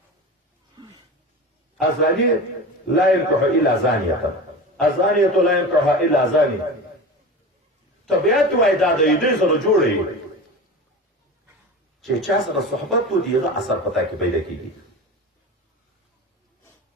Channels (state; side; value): normal; both; correlation 0.30